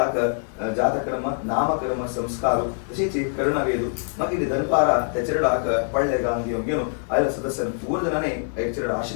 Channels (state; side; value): silent; right; digital silence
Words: जातक्रम नामक्रम संस्कार तशीच करणवेदू मगिरी धनपारा ते चरडाक पळले गांग घेऊन आयला सदस्य पूर्णने एक चरड